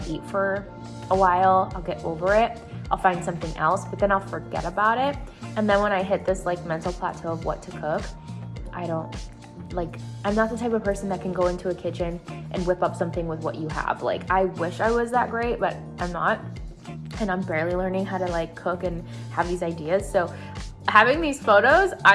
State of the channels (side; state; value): both; identical; correlation 1.00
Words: eat for a while, I'll get over it, I'll find something else, but then I'll forget about it. And then when I hit this like mental plateau of what to cook, I'm not the type of person that can go into a kitchen and whip up something with what you have. Like, I wish I was that great, but I'm not. And I'm barely learning how to like cook and have these ideas. So having these photos,